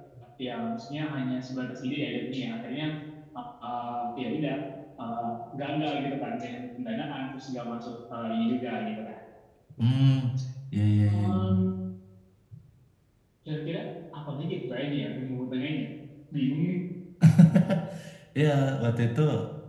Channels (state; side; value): identical; both; correlation 1.00